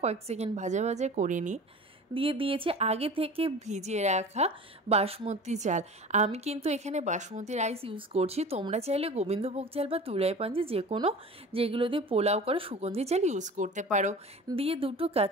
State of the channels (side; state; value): both; normal; correlation 0.38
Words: কয়েক সেকেন্ড ভাজা ভাজা করে নিই। দিয়ে দিয়েছে আগে থেকে ভিজিয়ে রাখা বাসমতি চাল। আমি কিন্তু এখানে বাসমতি রাইস ইউজ করছি, তোমরা চাইলে গোবিন্দভোগ চাল বা তুলাই পাঞ্জি যে কোনো যেগুলো দিয়ে পোলাও করে সুগন্ধি চাল ইউজ করতে পারো। দিয়ে দুটো